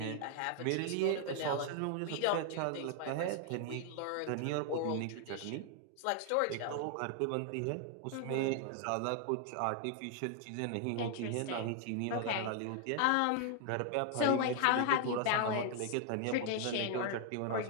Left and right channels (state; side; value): different; both; correlation 0.00